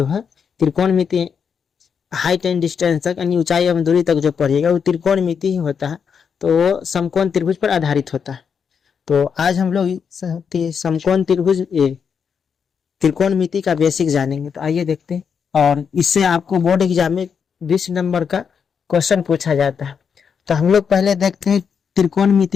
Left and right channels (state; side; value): quieter; right; 6.7 dB